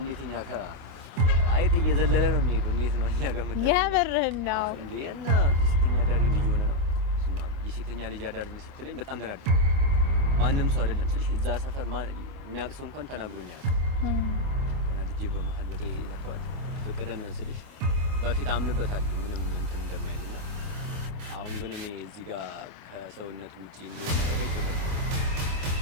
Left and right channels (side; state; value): left; late; 25 ms